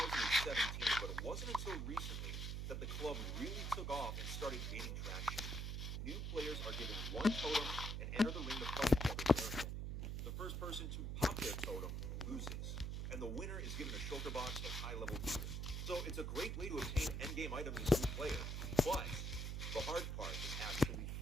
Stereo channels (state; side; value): noise; right; hum, 2 dB below the sound